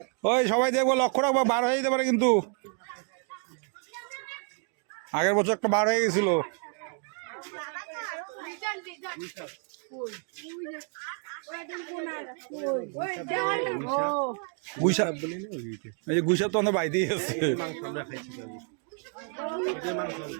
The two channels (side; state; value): left; quieter; 39.0 dB